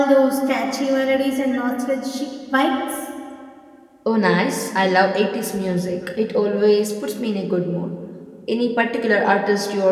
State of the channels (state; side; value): identical; both; correlation 1.00